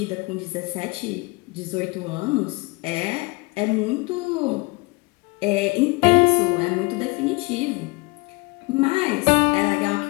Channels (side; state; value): right; quieter; 25.7 dB